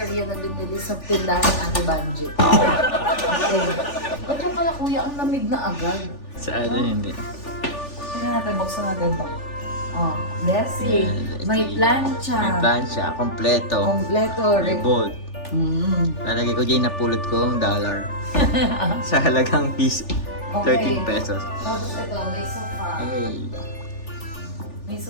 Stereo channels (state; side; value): late; right; 3.4 ms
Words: na binili sa tindahan ng Ate Banji. Okay. Ba't yung pala kuya, ang lamig na agad? Sa ano hindi. Tingnan natin, buksan natin to. Oh, Bessie. May plancha. May plancha. Kompleto. Kompleto. May bolt. Mm. Lalagay ko dyan, napulot ko ang dollar. Sa halagang piso. 13 pesos. Tapos ito, may sofa. Hey. May